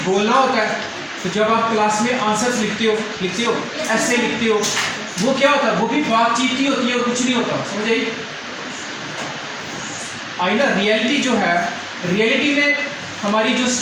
बोलना होता है। तो जब आप क्लास में आंसर्स लिखते हो, ऐसे लिखते हो, वो क्या होता है? वो भी बातचीत ही होती है और कुछ नहीं होता। समझ आई ना? रियलिटी जो है, रियलिटी में हमारी जो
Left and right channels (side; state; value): both; identical; correlation 1.00